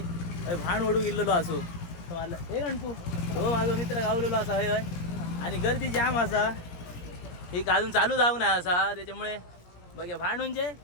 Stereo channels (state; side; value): late; right; 17 ms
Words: भाण ओढू गेलेलो असो. मला हे गणपू हो माझा मित्र गावलेलो असा हय हय, आणि गर्दी जाम असा. एक अजून चालू जाऊ ना असा, त्याच्यामुळे बघा भांड म्हणजे